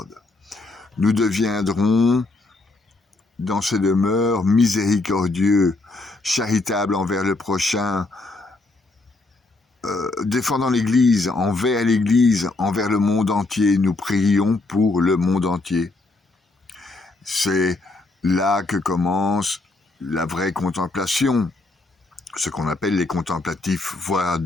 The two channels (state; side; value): quieter; right; 3.2 dB